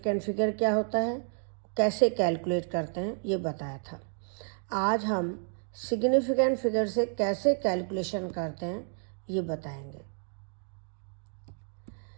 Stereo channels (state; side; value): silent; left; 57 dB below the other